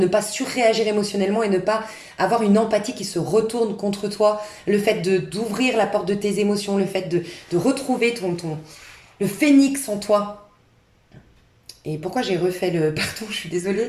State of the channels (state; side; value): identical; both; correlation 1.00